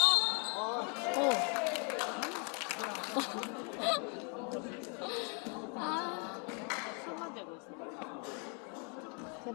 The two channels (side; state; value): right; quieter; 37.2 dB